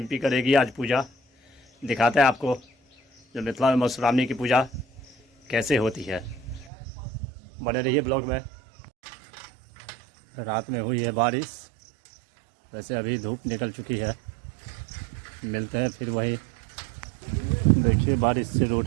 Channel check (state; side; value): drops out; left; at 6.7 s